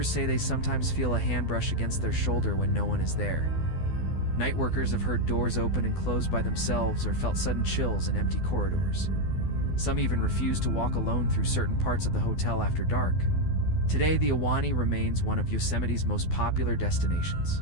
say they sometimes feel a hand brush against their shoulder when no one is there. Night workers have heard doors open and close by themselves or felt sudden chills in empty corridors. Some even refuse to walk alone through certain parts of the hotel after dark. Today, the Ahwahnee remains one of Yosemite's most popular destinations,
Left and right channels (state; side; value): late; right; 12 ms